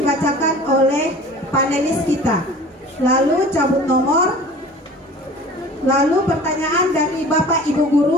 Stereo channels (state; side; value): normal; both; correlation 0.43